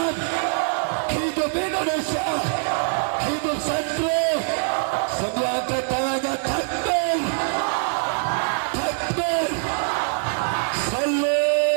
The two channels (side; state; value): left; silent; digital silence